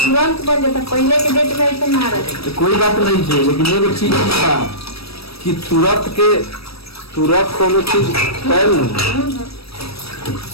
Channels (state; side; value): late; right; 0.77 ms